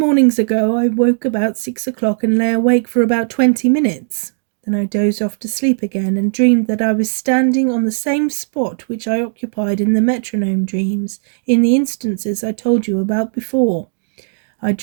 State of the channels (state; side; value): silent; left; digital silence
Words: ago I woke about 6 o'clock and lay awake for about 20 minutes. Then I dozed off to sleep again and dreamed that I was standing on the same spot which I occupied in the metronome dreams, in the instances I told you about before. I